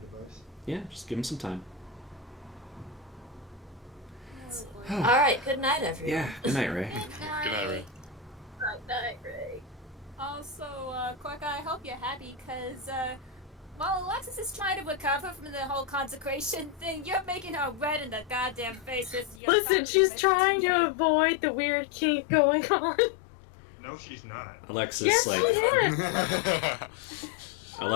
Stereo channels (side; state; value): right; drops out; at 19.4 s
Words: Yeah, just give him some time. Alright, good night, everyone. Yeah, good night, Ray. Good night, Ray. Night, Ray. Also, Quark, I hope you're happy, because, while Alexis is trying to recover from the whole consecration thing, you're making her red in the goddamn face with your Listen, she's trying to avoid the weird kink going on. No, she's not. Alexis, Yes, like, she is.